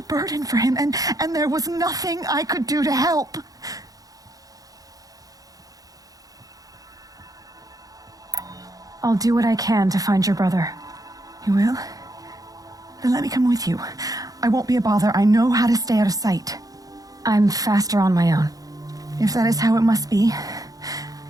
burden for him, and there was nothing I could do to help. I'll do what I can to find your brother. You will? Then let me come with you. I won't be a bother. I know how to stay out of sight. I'm faster on my own. If that is how it must be,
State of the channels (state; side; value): late; left; 0.17 ms